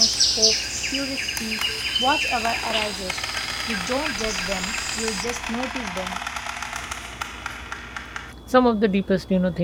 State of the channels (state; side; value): identical; both; correlation 1.00